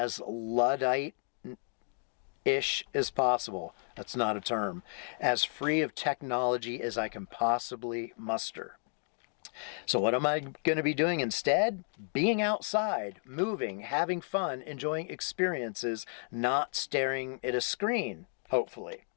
Luddite ish as possible. That's not a term. As free of technology as I can possibly muster. So what am I going to be doing instead? Being outside, moving, having fun, enjoying experiences, not staring at a screen, hopefully.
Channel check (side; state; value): right; silent; 56 dB below the other